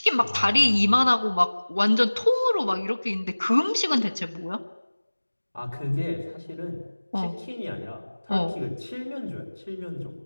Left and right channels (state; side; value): inverted; both; correlation -1.00